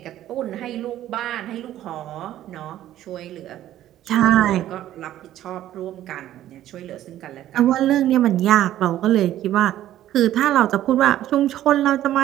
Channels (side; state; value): left; quieter; 12.9 dB